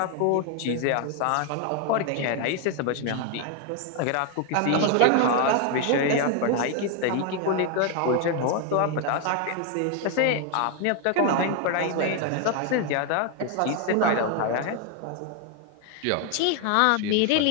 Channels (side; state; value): both; different; correlation 0.01